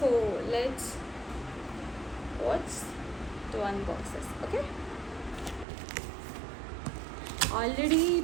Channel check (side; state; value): left; drops out; at 5.7 s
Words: let's watch to unboxes. Okay, already